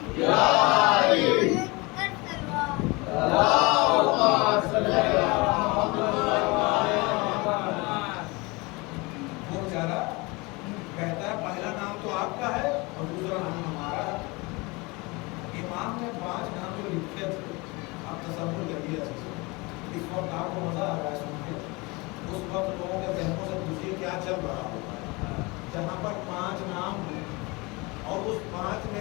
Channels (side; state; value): right; quieter; 25.6 dB